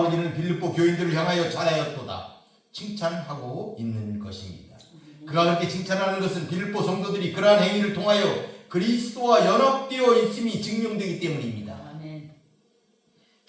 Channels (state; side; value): identical; both; correlation 1.00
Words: 이는 빌립보 교인들을 향하여 잘하였도다 칭찬하고 있는 것입니다. 그가 그렇게 칭찬하는 것은 빌립보 성도들이 그러한 행위를 통하여 그리스도와 연합되어 있음이 증명되기 때문입니다.